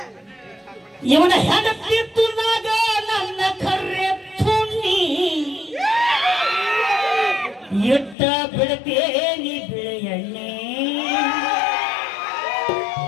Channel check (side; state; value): right; drops out; at 8.2 s